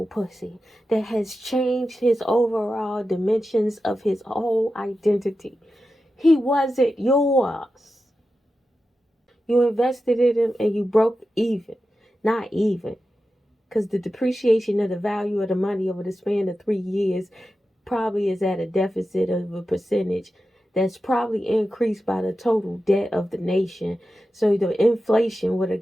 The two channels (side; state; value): both; normal; correlation 0.92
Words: pussy that has changed his overall dimensions of his whole identity. He wasn't yours. You invested in him and you broke even. Not even. Because the depreciation of the value of the money over the span of 3 years probably is at a deficit of a percentage that's probably increased by the total debt of the nation. So the inflation would